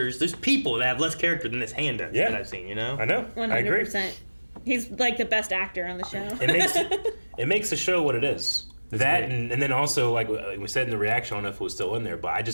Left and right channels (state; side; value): inverted; both; correlation -1.00